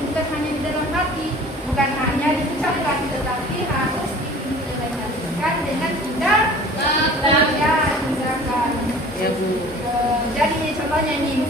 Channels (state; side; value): normal; both; correlation 0.45